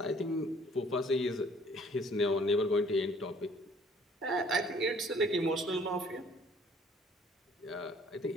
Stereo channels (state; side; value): normal; both; correlation 0.57